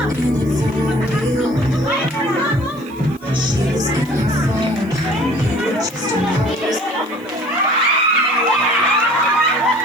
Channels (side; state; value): left; noise; hiss, 27 dB below the sound